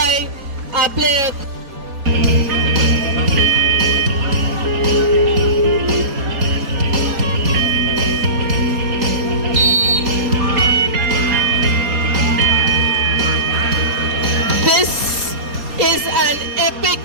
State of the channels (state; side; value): late; left; 4.2 ms